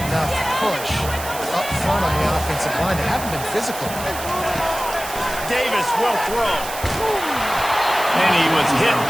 push up front on the offensive line. They haven't been physical. Davis will throw. And he was hit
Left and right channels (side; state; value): right; noise; hiss, 10 dB below the sound